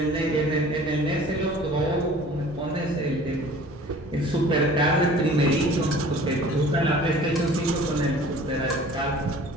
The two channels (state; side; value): normal; both; correlation 0.47